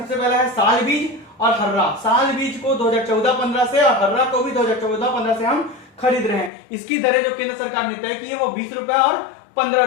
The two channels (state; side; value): drops out; right; at 6.5 s